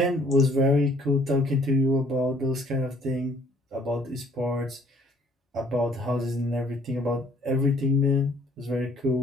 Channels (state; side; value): normal; both; correlation 0.60